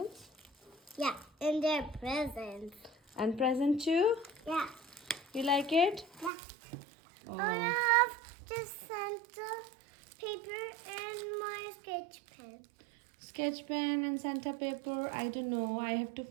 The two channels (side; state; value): left; drops out; at 6.3 s